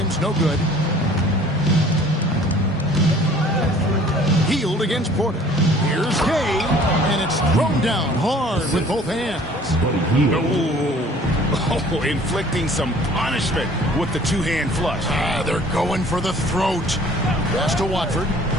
no good. Hield against Porter. Here's Gay, and it's thrown down hard with both hands. Oh, inflicting some punishment with the two-hand flush. They're going for the throat. Pass to Watford.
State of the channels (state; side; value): normal; both; correlation 0.52